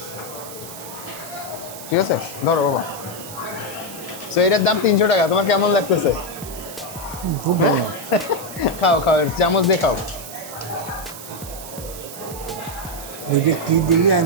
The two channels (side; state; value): right; noise; hiss, 13 dB below the sound